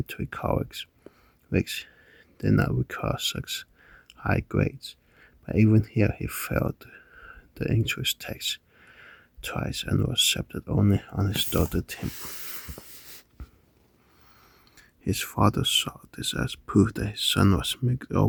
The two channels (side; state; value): both; identical; correlation 1.00